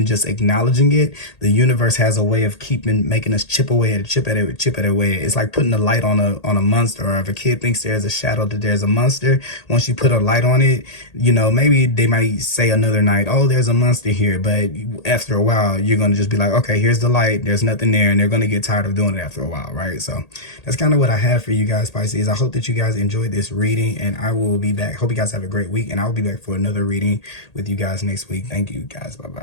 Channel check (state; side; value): late; right; 1.8 ms